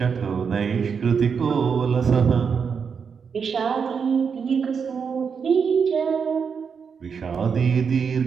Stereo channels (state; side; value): quieter; left; 6.2 dB